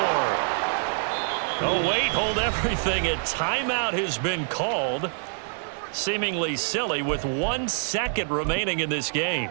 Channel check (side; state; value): left; silent; 61 dB below the other